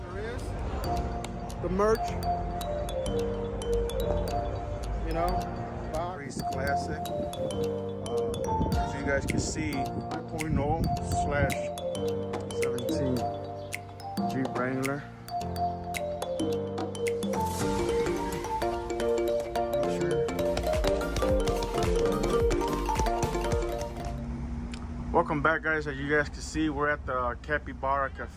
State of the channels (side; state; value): both; identical; correlation 1.00